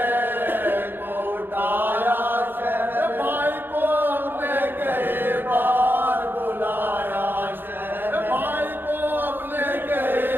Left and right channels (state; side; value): late; left; 0.098 ms